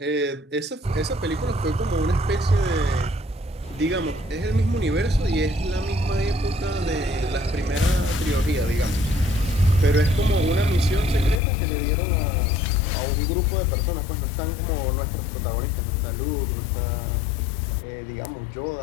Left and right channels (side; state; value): right; drops out; at 11.4 s